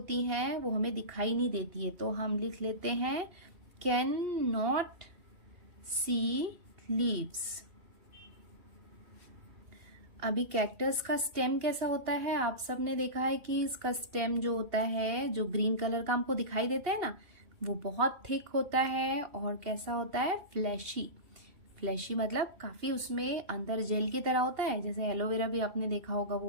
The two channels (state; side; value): late; left; 2.8 ms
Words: हैं वो हमें दिखाई नहीं देती है, तो हम लिख लेते हैं कैन नॉट सी लीव्स। अभी कैक्टस का स्टेम कैसा होता है, आप सबने देखा है कि इसका स्टेम जो होता है, जो ग्रीन कलर का हमको दिखाई देता है ना, वो बहुत थिक होता है और कैसा होता है, फ्लैशी। फ्लैशी मतलब काफी उसमें अंदर जेल की तरह होता है, जैसे एलोवेरा भी आपने देखा होगा,